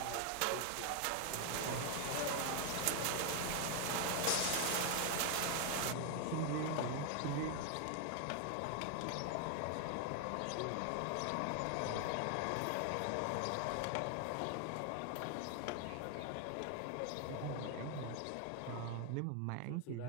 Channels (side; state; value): both; different; correlation 0.00